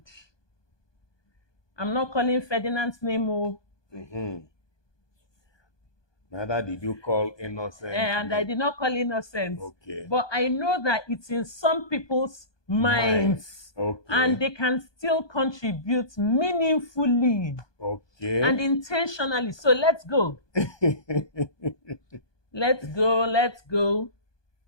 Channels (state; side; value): late; right; 1.2 ms